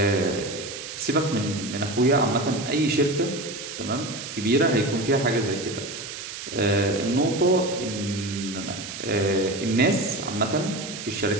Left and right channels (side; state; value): right; noise; hiss, 9 dB below the sound